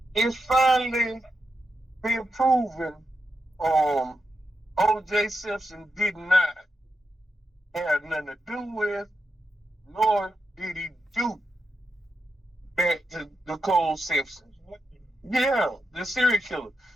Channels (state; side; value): normal; both; correlation 0.87